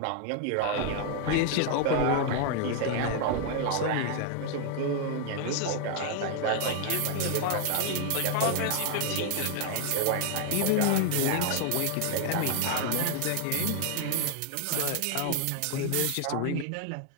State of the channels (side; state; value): both; different; correlation 0.00